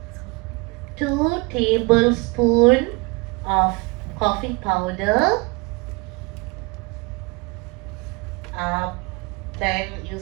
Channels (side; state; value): left; quieter; 27.1 dB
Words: 2 tablespoons of coffee powder. Then you